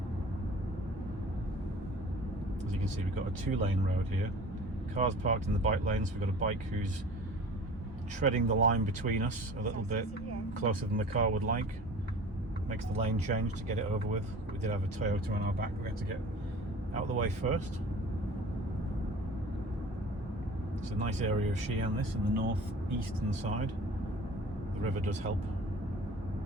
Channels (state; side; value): normal; both; correlation 0.43